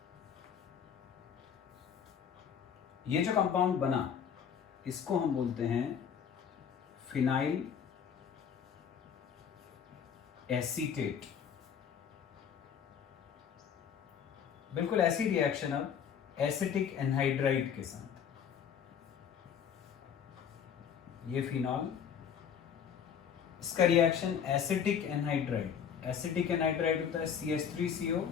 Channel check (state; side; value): quieter; right; 7.8 dB